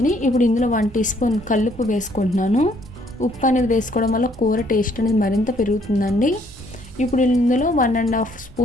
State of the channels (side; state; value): both; normal; correlation 0.65